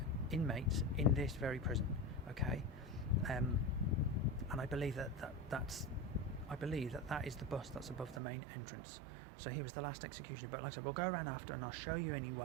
inmates in this very prison. Okay, and I believe that is the bust that's above the main entrance. So he was the last executioner. But like I said, we'll go around after, and I'll show you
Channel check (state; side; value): drops out; left; at 8.2 s